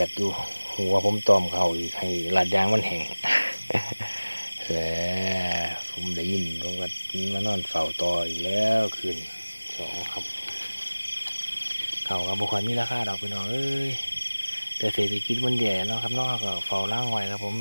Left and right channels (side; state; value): both; inverted; correlation -1.00